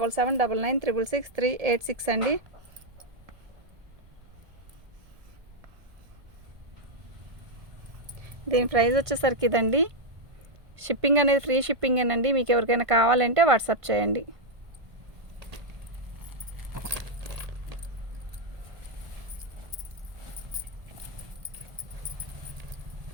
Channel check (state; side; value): late; left; 1.5 ms